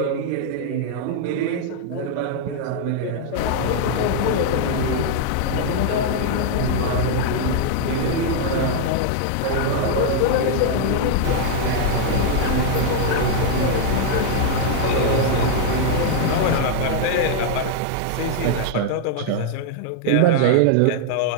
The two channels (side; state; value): both; different; correlation -0.01